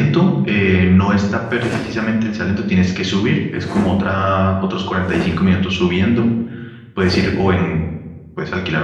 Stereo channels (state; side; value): identical; both; correlation 1.00